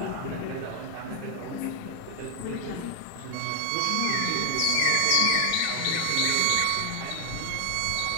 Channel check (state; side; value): different; both; correlation 0.00